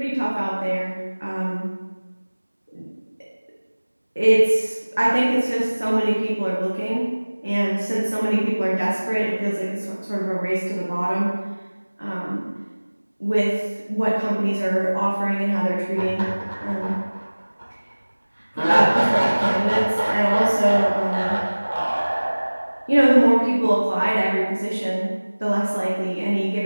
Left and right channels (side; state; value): both; inverted; correlation -1.00